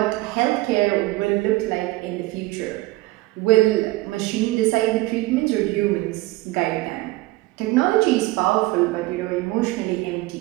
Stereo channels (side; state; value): left; quieter; 19.7 dB